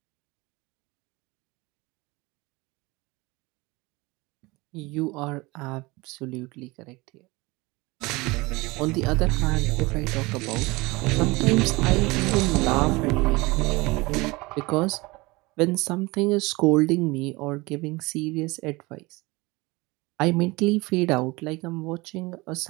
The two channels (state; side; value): quieter; left; 23.2 dB